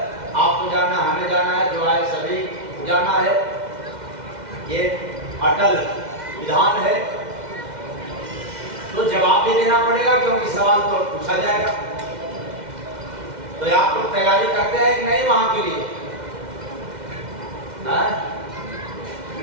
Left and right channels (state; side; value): late; left; 2.1 ms